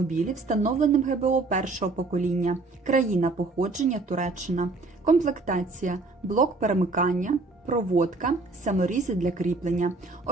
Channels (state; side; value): quieter; left; 3.5 dB